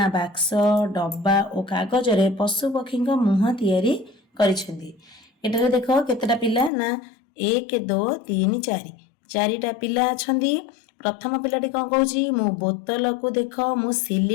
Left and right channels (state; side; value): drops out; right; at 6.7 s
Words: बाक्स डब्बा और कागज रे पशु पक्षी मुह तैयारी करिसेंती। एटारे देख केतेटा पिला ना 1 2 3 4 चारिटा पिला अछंती। प्रथम पिलाटी कौन कहूँ मु बोतल को देख मु